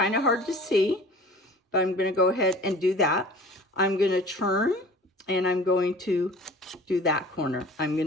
of hard to see, but I'm going to go ahead and do that. I'm going to turn and I'm going to do that corner. I'm going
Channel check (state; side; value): normal; both; correlation 0.44